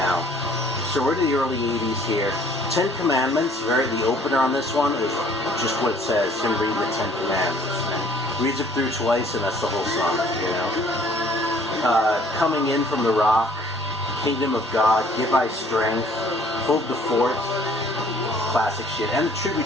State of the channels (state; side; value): normal; both; correlation 0.57